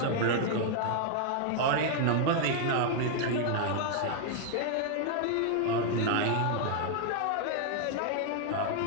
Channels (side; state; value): both; different; correlation 0.00